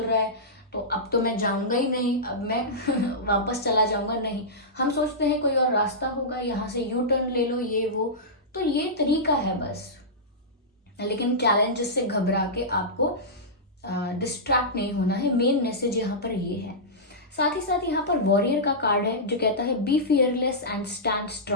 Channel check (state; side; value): normal; both; correlation -0.15